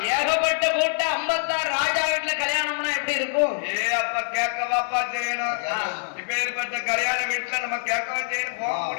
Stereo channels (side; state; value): right; silent; 58 dB below the other